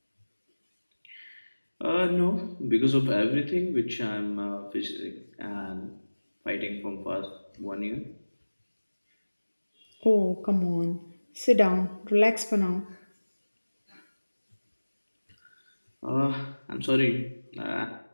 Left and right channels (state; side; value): inverted; both; correlation -1.00